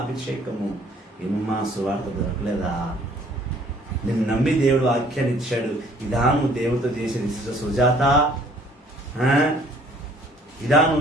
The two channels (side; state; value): both; normal; correlation 0.58